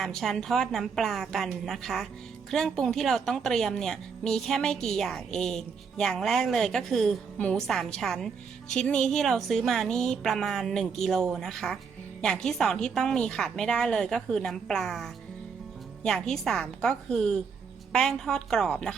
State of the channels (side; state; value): left; quieter; 5.9 dB